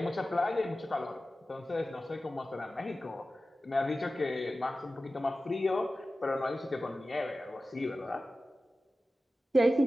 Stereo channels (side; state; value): both; normal; correlation 0.95